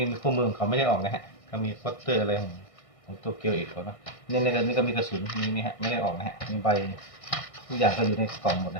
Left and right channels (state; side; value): late; right; 1.6 ms